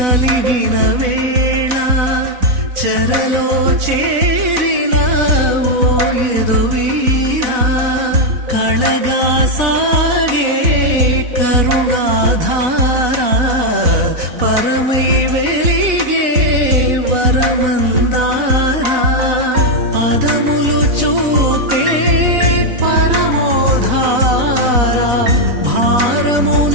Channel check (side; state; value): left; late; 4.0 ms